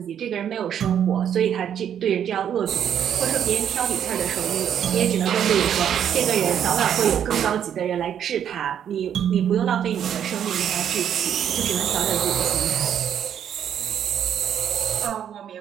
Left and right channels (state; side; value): quieter; left; 9.2 dB